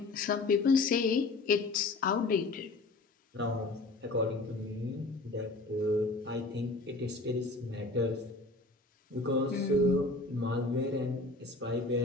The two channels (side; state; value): right; quieter; 3.2 dB